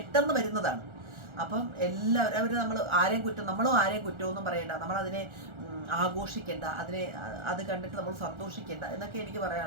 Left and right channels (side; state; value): left; late; 1.4 ms